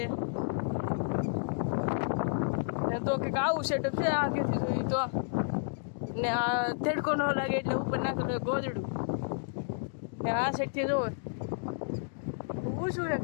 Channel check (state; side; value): silent; right; digital silence